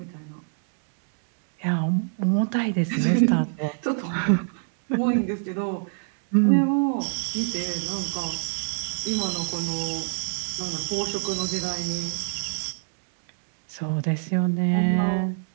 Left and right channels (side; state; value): left; silent; digital silence